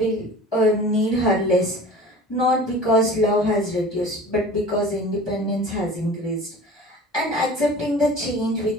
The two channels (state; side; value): normal; both; correlation 0.41